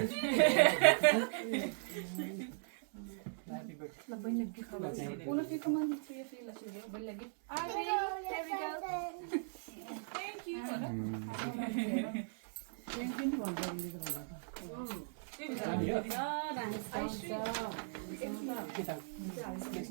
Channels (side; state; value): left; silent; 52 dB below the other